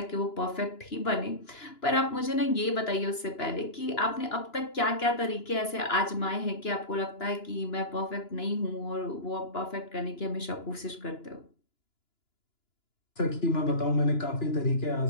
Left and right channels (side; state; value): right; late; 2.9 ms